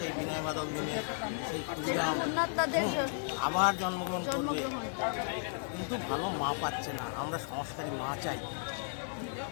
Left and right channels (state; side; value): silent; right; 55 dB below the other